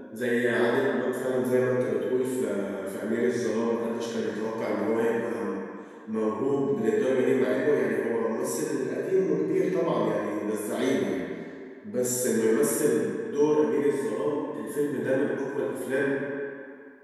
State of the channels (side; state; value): both; identical; correlation 1.00